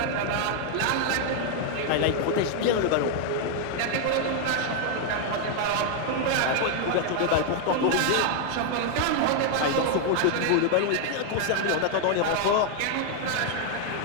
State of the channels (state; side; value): different; both; correlation 0.00